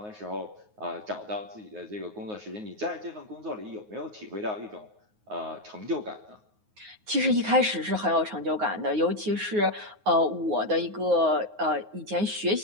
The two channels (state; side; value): late; left; 9.5 ms